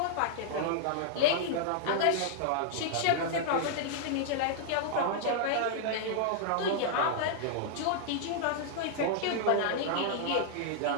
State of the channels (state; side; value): different; both; correlation -0.01